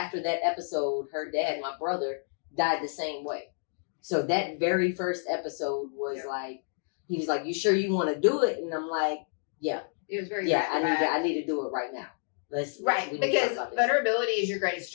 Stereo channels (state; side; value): silent; right; digital silence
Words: that episode, her dad, my brother, died the same way. So that very first episode was Yeah. like, he was like, you sure you want to do it? And I'm like, yeah, It was very I bad. need to do it right now. Right. we need to Because talk about this. vulnerability is your greatest